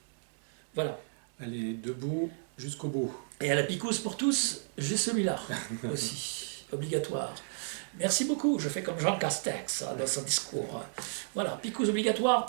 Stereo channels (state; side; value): silent; left; digital silence